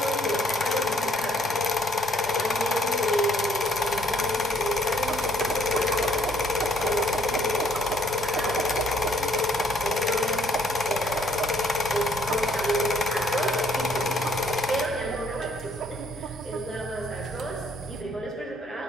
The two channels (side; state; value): both; normal; correlation 0.65